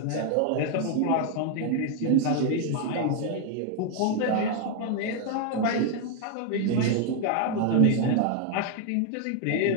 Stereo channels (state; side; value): different; both; correlation 0.01